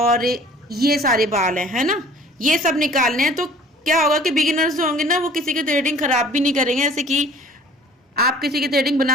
ये सारे बाल हैं, है ना, ये सब निकालने हैं। तो क्या होगा कि बिगिनर्स जो होंगे ना, वो किसी की थ्रेडिंग खराब भी नहीं करेंगे। जैसे कि आप किसी की थ्रेडिंग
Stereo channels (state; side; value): normal; both; correlation 0.50